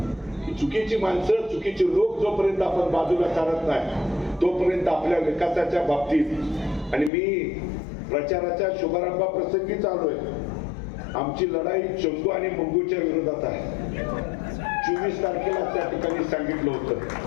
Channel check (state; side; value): drops out; right; at 7.1 s